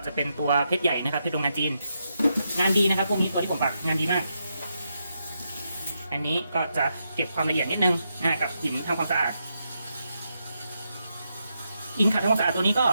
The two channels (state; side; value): inverted; both; correlation -0.83